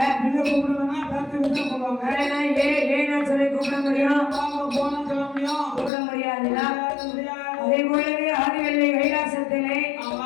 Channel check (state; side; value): drops out; right; at 5.9 s